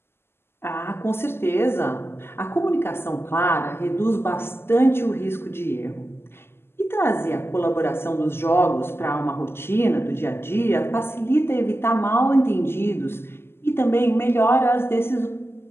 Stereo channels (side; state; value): right; late; 0.12 ms